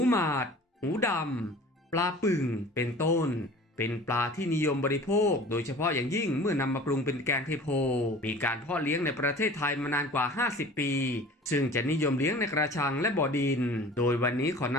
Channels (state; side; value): normal; both; correlation 0.43